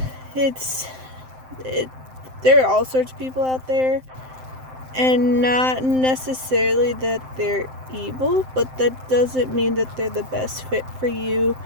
There are all sorts of people out there. And not necessarily that they're evil, but that doesn't mean that they're the best fit for you,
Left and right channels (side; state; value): left; late; 7.7 ms